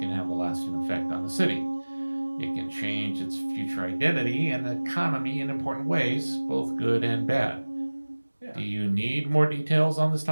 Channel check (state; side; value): inverted; both; correlation -1.00